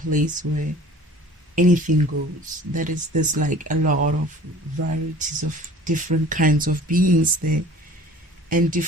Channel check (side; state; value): both; normal; correlation 0.46